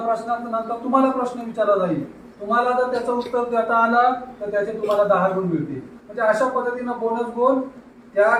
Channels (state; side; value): identical; both; correlation 1.00